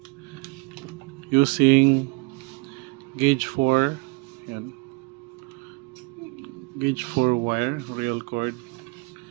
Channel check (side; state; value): left; quieter; 29.2 dB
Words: using gauge 4 yan, gauge 4 wire real cord